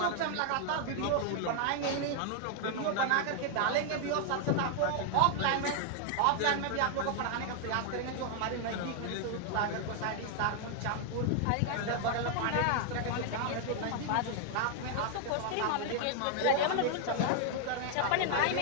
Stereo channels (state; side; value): different; both; correlation 0.00